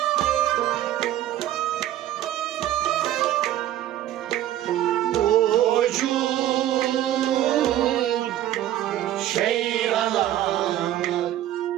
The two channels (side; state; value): left; quieter; 12.8 dB